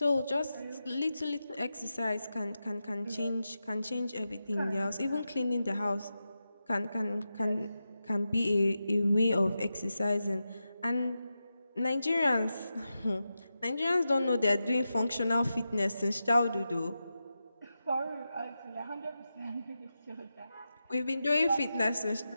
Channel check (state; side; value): inverted; both; correlation -0.90